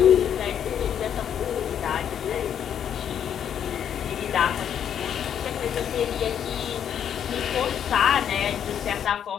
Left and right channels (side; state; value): right; quieter; 9.0 dB